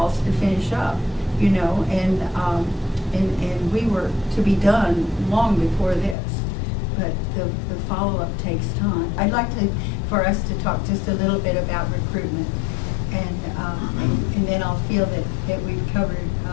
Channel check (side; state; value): right; drops out; at 6.2 s